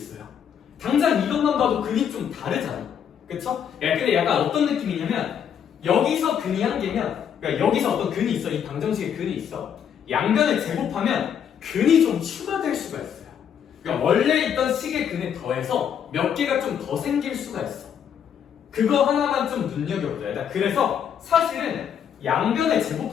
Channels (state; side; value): quieter; right; 8.4 dB